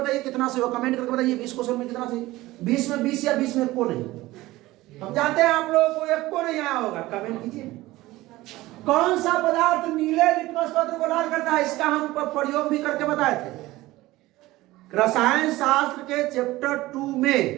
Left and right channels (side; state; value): left; quieter; 18.2 dB